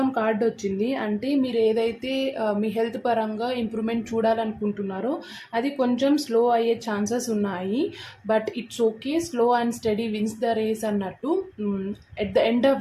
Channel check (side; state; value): both; identical; correlation 1.00